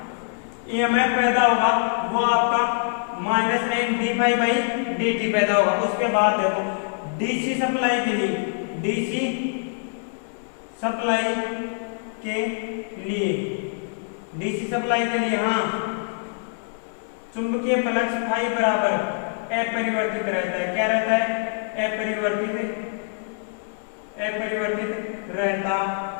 ईएमएफ पैदा होगा वो आपका minus N D phi by D T पैदा होगा। उसके बाद देखो डीसी सप्लाई के लिए, डीसी सप्लाई के लिए, डीसी सप्लाई के लिए हाँ चुंबकीय फ्लक्स फाई बराबर अपरिवर्तित रहता है। क्या रहता है, अपरिवर्तित, अपरिवर्तित रहता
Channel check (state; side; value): silent; right; 60 dB below the other